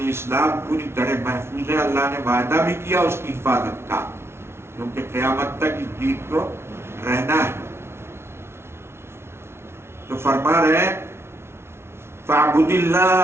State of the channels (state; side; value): late; left; 0.12 ms